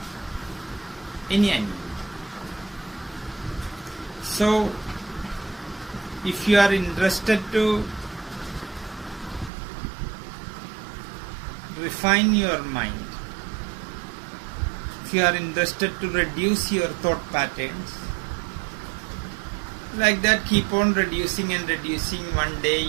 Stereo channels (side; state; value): left; drops out; at 9.5 s